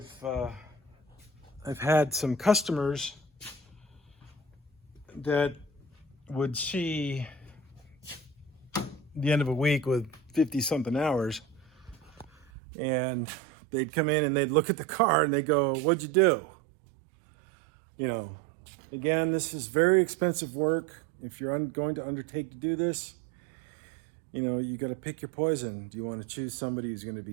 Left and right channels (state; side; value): drops out; left; at 12.5 s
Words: I've had some customers that would see the end of a week with 50 something hours, and they'd come in and they'd look at the car and they go, "What'd you do?" You know, again, this is very expensive work. If you're going to undertake to do this, you know, you got to pick your poison. Do you want to choose somebody who's going to